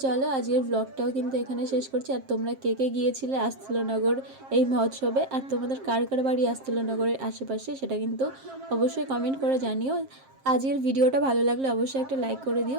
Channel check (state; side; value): late; left; 7.5 ms